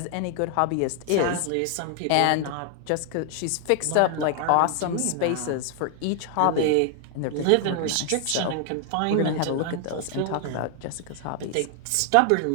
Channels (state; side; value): different; both; correlation 0.00